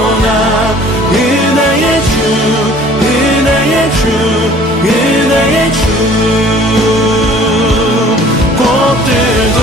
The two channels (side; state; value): both; normal; correlation 0.52